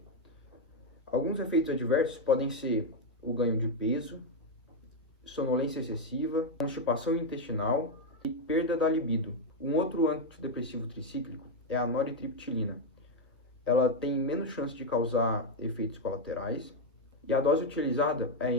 Alguns efeitos adversos podem ser o ganho de peso, sonolência excessiva, constipação intestinal e perda da libido. Um outro antidepressivo tricíclico é a noritriptilina. Ela tem menos chance de causar efeitos colaterais e a dose utilizada é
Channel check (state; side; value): normal; both; correlation 0.03